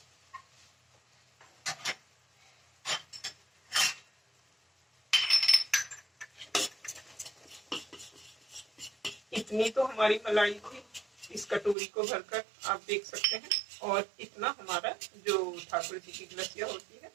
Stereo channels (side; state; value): left; drops out; at 11.8 s